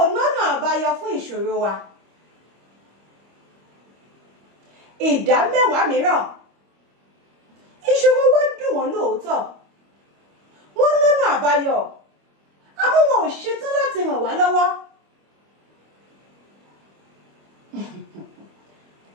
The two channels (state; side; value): late; left; 25 ms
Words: lọ́nà àbáyọ fún ìṣòro wa. Ìdá 10 mìíràn ìṣòro wa dùn wọ́n lóòótọ́, wọ́n lọ́nà àbáyọ, àmọ́ wọn ò ṣetán láti ràn wá lọ́wọ́.